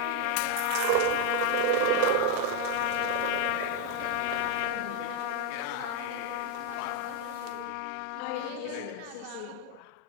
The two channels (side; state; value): both; different; correlation 0.00